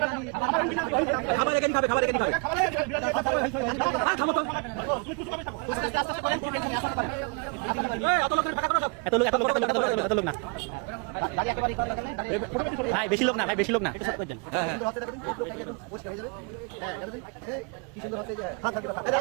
ভাই বেশি লোক না, ভাই বেশি লোক না।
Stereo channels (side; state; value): left; quieter; 32.9 dB